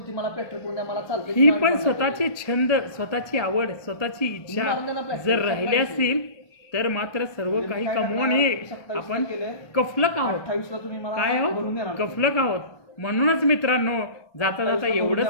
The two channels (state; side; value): late; right; 1.2 ms